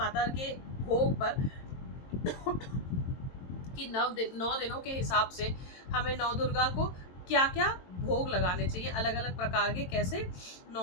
के भोग पर कि 9 दिनों के हिसाब से हमें नौ दुर्गा को क्या क्या भोग लगाने चाहिए, अलग अलग प्रकार के कैसे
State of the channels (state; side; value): late; right; 22 ms